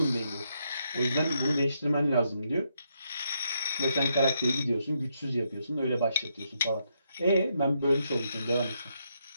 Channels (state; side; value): inverted; both; correlation -0.78